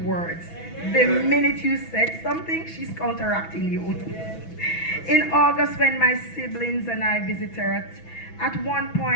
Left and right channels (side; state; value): right; late; 6.1 ms